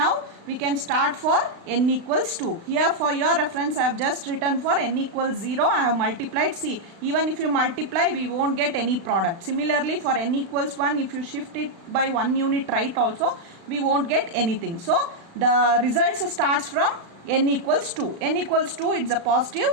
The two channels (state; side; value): late; left; 36 ms